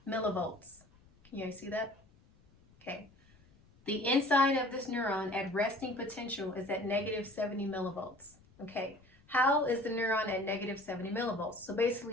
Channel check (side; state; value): left; noise; rumble, 28 dB below the sound